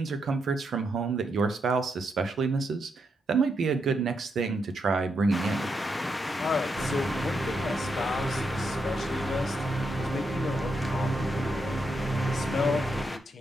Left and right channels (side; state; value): both; normal; correlation 0.82